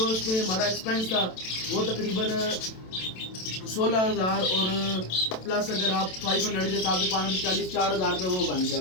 इसमें हमारा एक्सपेंस था वो तकरीबन 16,000 और प्लस अगर आप 500 के हिसाब से 540 4,000 रुपये वो बन गया।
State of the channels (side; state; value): right; late; 27 ms